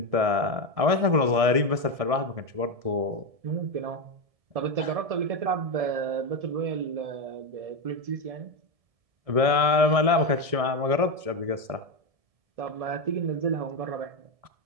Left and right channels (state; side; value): late; left; 1.7 ms